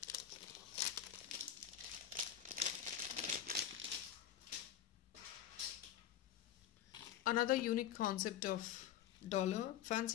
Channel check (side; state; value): right; quieter; 10.3 dB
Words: Another unique concept of dollar,